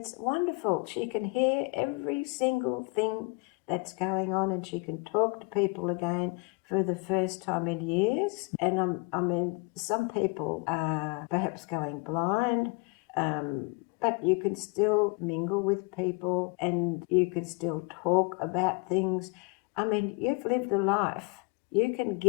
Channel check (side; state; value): right; quieter; 29.1 dB